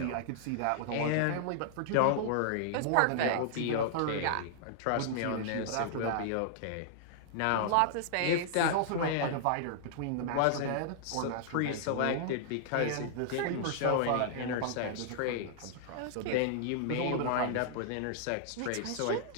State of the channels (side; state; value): both; different; correlation -0.01